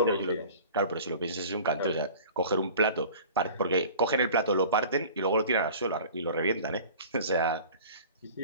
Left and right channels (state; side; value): inverted; both; correlation -0.42